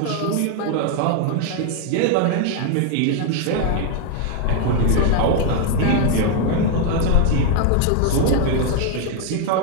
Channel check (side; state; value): both; different; correlation 0.01